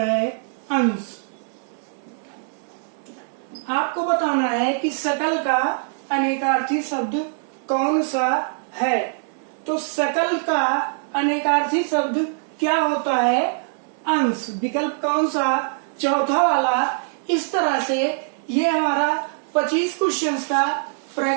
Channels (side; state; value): left; silent; digital silence